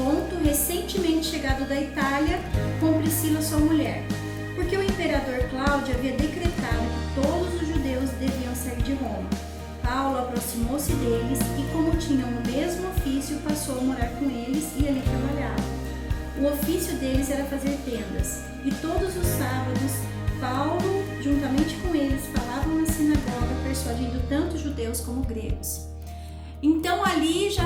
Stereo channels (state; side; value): identical; both; correlation 1.00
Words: recentemente chegado da Itália, com Priscila, sua mulher. Porque o imperador Cláudio havia decretado que todos os judeus deviam sair de Roma. Paulo aproximou-se deles e, como tinham o mesmo ofício, passou a morar com eles e ali trabalhava. O ofício deles era fazer tendas, e todos os sábados, Paulo, juntamente com eles, falavam na sinagoga, persuadindo tanto judeus como gregos. Então ali